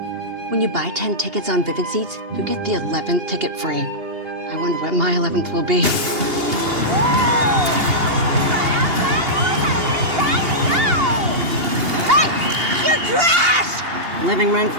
When you buy 10 tickets on Vivid Seats, you get the 11th ticket free. I wonder what my 11th will be. Hey, you're trash! Living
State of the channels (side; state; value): left; late; 2.8 ms